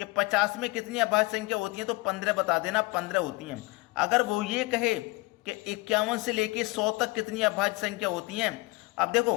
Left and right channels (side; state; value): right; quieter; 23.7 dB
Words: 50 में कितनी अभाज्य संख्या होती हैं तो 15 बता देना, 15 होती हैं। अगर वो ये कहे कि 51 से लेके 100 तक कितनी अभाज्य संख्या होती हैं, अब देखो